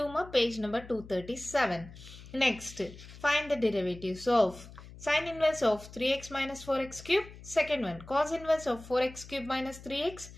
ma, page number 237. Next, find the derivatives of sin inverse of 3x minus 4x cube, second one, cos inverse of 4x cube minus 3x,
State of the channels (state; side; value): noise; left; hum, 17 dB below the sound